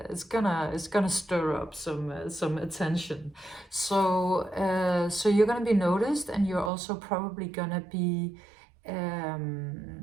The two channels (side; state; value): left; drops out; at 6.7 s